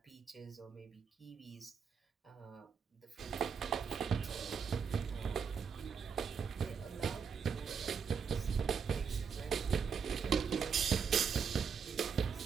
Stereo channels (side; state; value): left; quieter; 6.4 dB